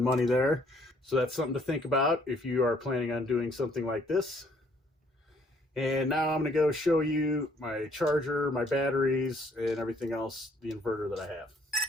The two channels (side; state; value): both; normal; correlation 0.64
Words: money there. So that's something to think about if you are planning on doing something like this. And now I'm going to go show you my charger, my batteries, and everything else, the inverter that I have.